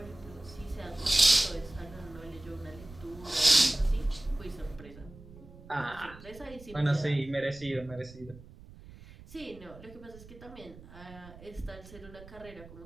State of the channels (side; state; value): right; noise; rumble, 18 dB below the sound